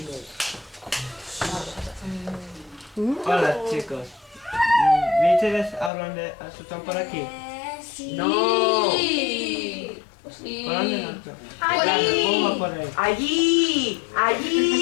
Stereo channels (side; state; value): right; drops out; at 5.9 s